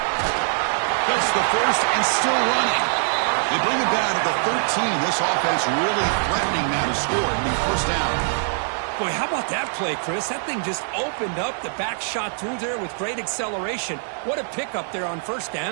That's the first and still running. They bring it down to the 13. This offense really threatening now to score and be first down. Boy, how about that play, Chris? That thing just opened up. The back shot through there with great acceleration. What a pickup there on first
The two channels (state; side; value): silent; left; digital silence